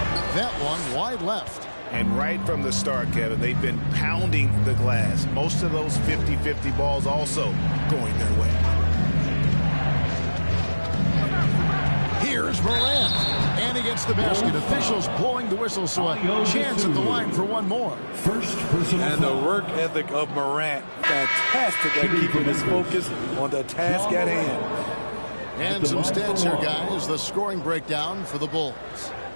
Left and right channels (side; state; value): both; inverted; correlation -1.00